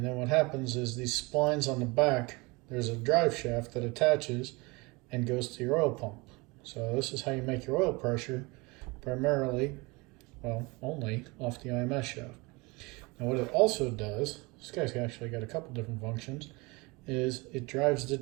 then what happens is these splines on the back, there's a drive shaft that attaches and goes to your oil pump. So this is how you make your oil pressure, primarily, well, only off the IMS shaft. Now what it also does, this guy's actually got a couple different functions, is it drives the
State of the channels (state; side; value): quieter; left; 25.6 dB